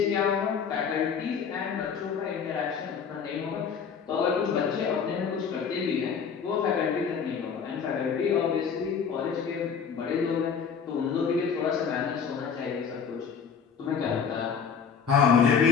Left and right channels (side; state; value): right; quieter; 6.5 dB